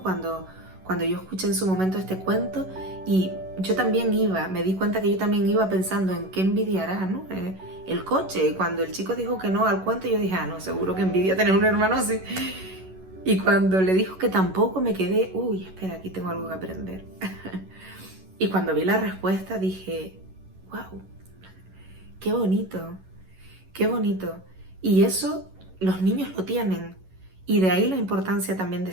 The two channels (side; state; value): left; late; 11 ms